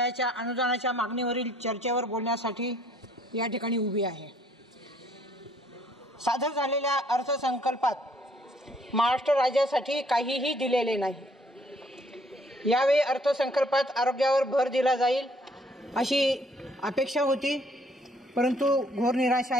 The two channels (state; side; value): normal; both; correlation 0.63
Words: अनुदानाच्या मागणीवरील चर्चेवर बोलण्यासाठी या ठिकाणी उभी आहे। सादर झालेल्या अर्थसंकल्पात महाराष्ट्र राज्यासाठी काहीही दिलेले नाही। यावेळी अर्थसंकल्पात आरोग्यावर भर दिला जाईल अशी अपेक्षा होती, परंतु घोर निराशा